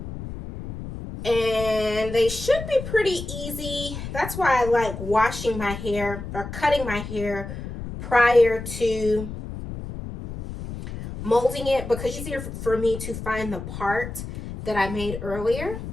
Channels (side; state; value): left; noise; rumble, 9 dB below the sound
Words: and they should be pretty easy. That's why I like washing my hair or cutting my hair prior to molding it, because it's easier for me to find the part that I made earlier.